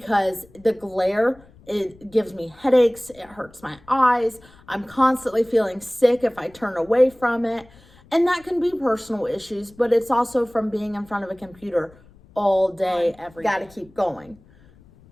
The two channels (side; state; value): left; noise; rumble, 26 dB below the sound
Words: the glare, it gives me headaches, it hurts my eyes. I'm constantly feeling sick if I turn away from it. And that can be personal issues, but it's also from being in front of a computer all day, every day. Gotta keep going.